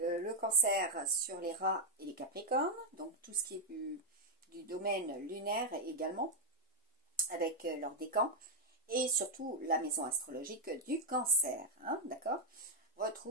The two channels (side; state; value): both; normal; correlation -0.01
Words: cancer sur les rats et les capricornes, donc tout ce qui est du domaine lunaire également, avec leur décan, et surtout la maison astrologique du cancer, hein, d'accord.